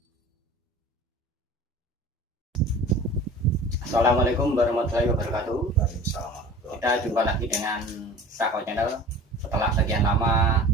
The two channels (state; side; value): normal; both; correlation 0.42